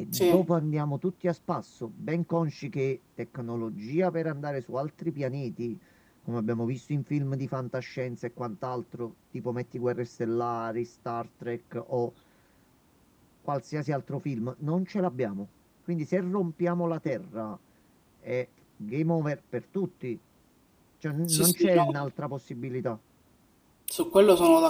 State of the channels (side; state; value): both; identical; correlation 1.00